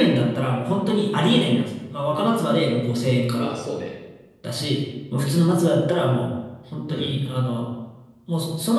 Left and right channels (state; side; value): identical; both; correlation 1.00